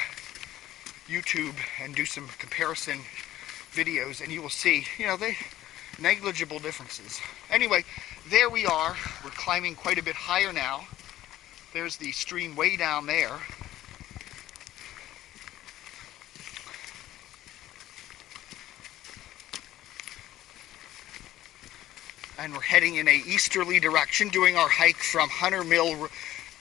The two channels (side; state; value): right; quieter; 14.1 dB